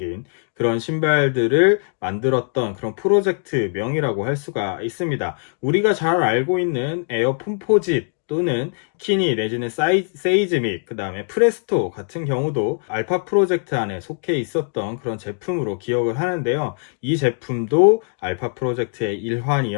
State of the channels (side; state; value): right; silent; 59 dB below the other